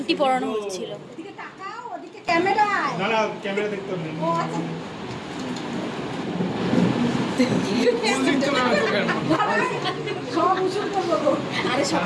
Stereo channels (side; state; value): both; identical; correlation 1.00